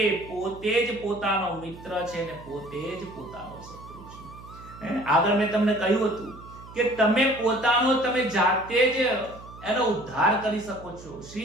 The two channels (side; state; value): right; noise; hum, 18 dB below the sound